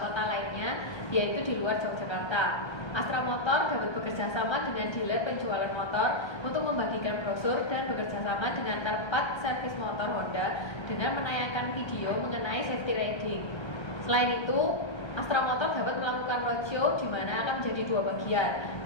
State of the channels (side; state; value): right; late; 1.3 ms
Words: lainnya, yaitu di luar Yogyakarta. Astra Motor dapat bekerja sama dengan dealer penjualan motor untuk membagikan brosur dan bekerja sama dengan tempat servis motor Honda dengan menayangkan video mengenai safety riding. Selain itu, Astra Motor dapat melakukan roadshow di mana akan menjadi dua bagian.